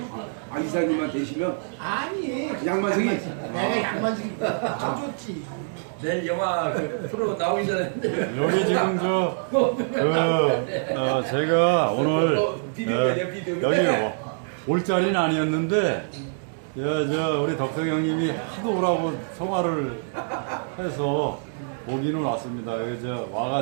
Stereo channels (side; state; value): left; silent; digital silence